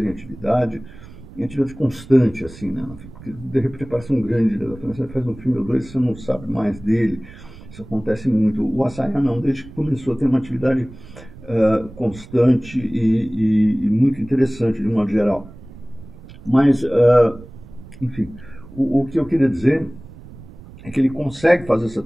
em atividade constante, assim, né? Porque de repente parece um grande diretor francês, faz um filme ou dois e você não sabe mais dele. Isso acontece muito. O Assayas não, desde que começou a ter uma atividade constante e muito interessante, de um modo geral. Mas, enfim, o que eu queria dizer é que ele consegue fazer essa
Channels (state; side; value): noise; right; rumble, 18 dB below the sound